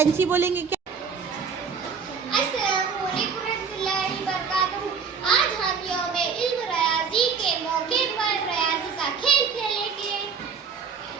बोलेंगे क्या? अस्सलामु अलैकुम रहमतुल्लाहि व बरकातुहू। आज हम यौम इल्म रियाज़ी के मौके पर रियाज़ी का खेल खेलेंगे।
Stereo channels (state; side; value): quieter; left; 6.0 dB